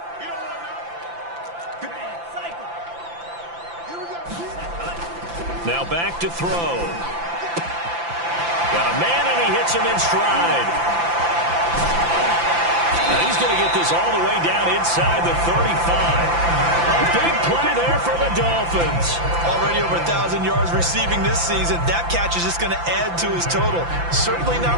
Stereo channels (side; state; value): left; late; 5.9 ms